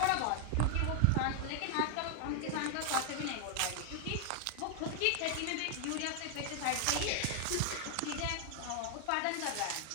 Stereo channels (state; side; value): different; both; correlation 0.00